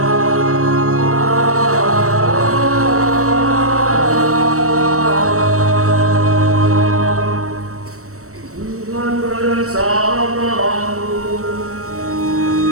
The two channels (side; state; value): left; late; 0.64 ms